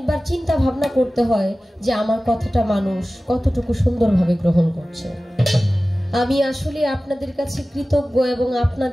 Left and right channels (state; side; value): normal; both; correlation 0.96